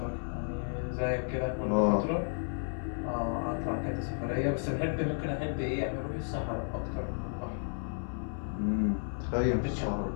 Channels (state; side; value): silent; right; 56 dB below the other